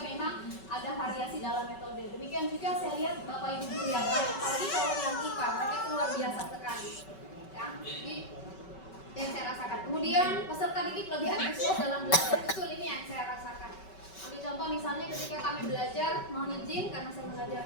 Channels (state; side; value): late; right; 5.3 ms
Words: memang ada variasi dalam metode. Demikian juga saya lihat Bapak Ibu guru yang lain, apalagi kalau yang IPA, mereka itu luar biasa sekali. Ya, jadi yang saya rasakan. Kemudian peserta didik lebih antusias dalam belajar. Betul, ini yang saya rasakan. Ambil contoh misalnya ketika kami belajar, mohon izin karena saya